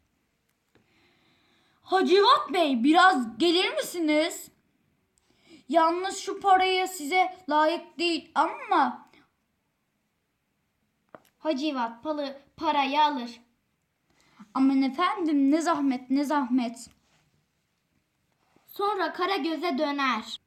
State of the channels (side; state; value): both; identical; correlation 1.00